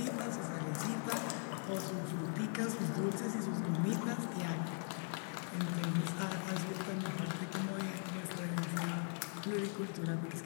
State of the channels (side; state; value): right; silent; 51 dB below the other